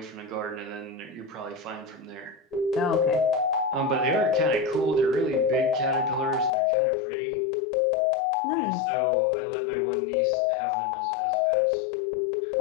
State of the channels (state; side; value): drops out; right; at 6.5 s